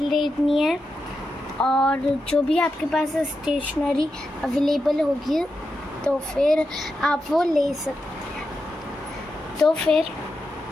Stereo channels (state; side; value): normal; both; correlation 0.87